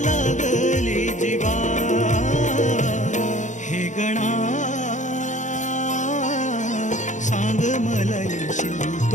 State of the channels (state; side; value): late; right; 0.35 ms